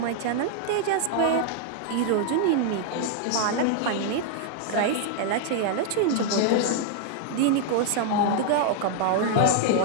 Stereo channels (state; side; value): different; both; correlation 0.00